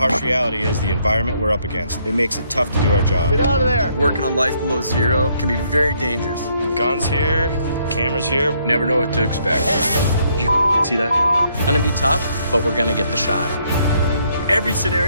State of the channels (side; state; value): both; inverted; correlation -0.70